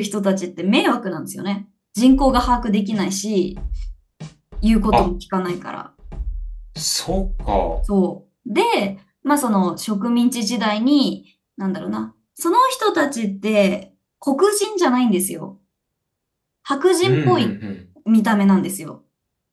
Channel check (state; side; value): identical; both; correlation 1.00